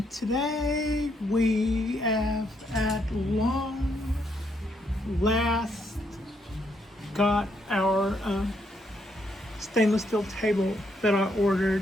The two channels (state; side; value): normal; both; correlation 0.75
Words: today we have at long last got our stainless steel table that I